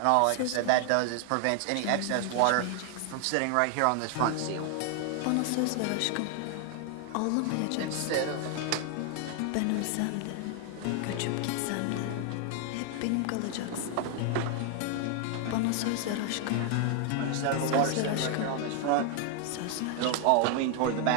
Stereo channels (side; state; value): both; different; correlation 0.00